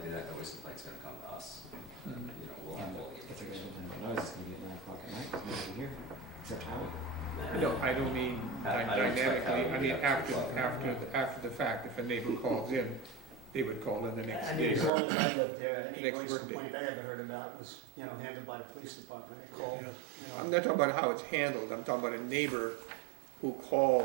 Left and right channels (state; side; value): drops out; left; at 14.9 s